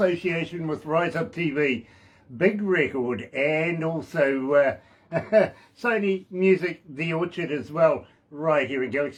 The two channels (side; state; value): both; identical; correlation 1.00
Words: with Rise Up TV, Big Record and also Sony Music The Orchard as well. Right here at